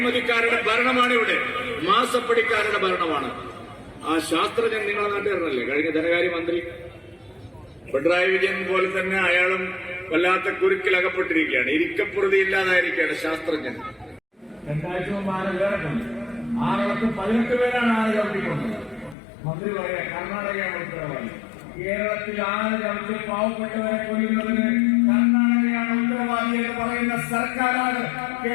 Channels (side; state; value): right; drops out; at 19.2 s